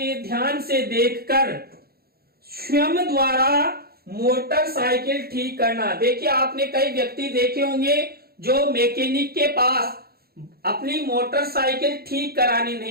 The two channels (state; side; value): late; left; 0.45 ms